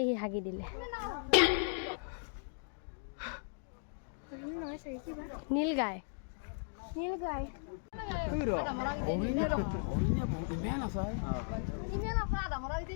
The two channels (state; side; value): silent; right; digital silence